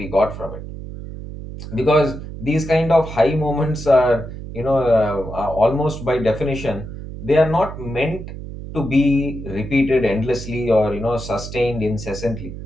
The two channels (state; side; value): noise; right; hum, 10 dB below the sound